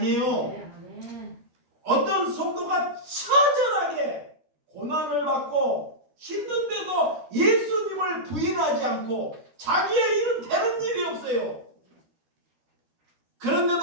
아멘. 어떤 성도가 처절하게 고난을 받고 힘든데도 예수님을 부인하지 않고 자기의 일은 되는 일이 없어요.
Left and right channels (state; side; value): late; left; 13 ms